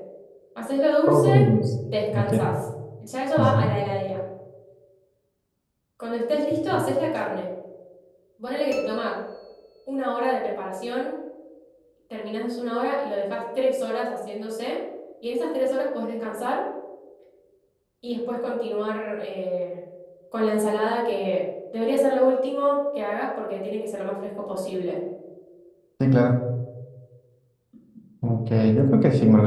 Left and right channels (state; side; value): identical; both; correlation 1.00